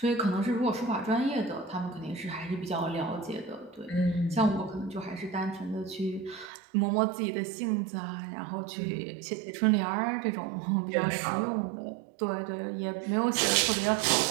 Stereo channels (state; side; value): drops out; left; at 6.5 s